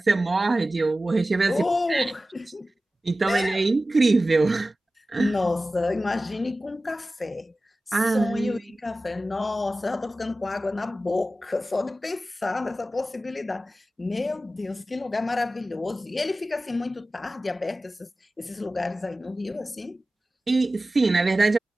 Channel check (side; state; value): both; normal; correlation 0.95